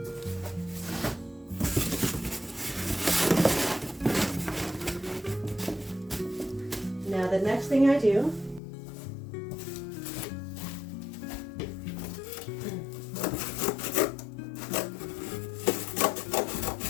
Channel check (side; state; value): right; drops out; at 8.6 s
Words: Now the next thing I do